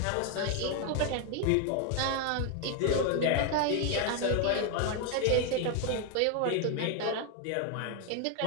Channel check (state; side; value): different; both; correlation 0.01